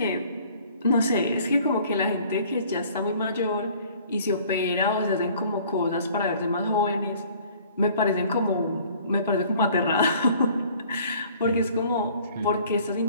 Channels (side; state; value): both; inverted; correlation -0.54